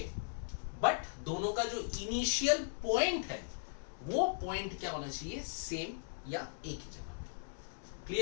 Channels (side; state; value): right; silent; digital silence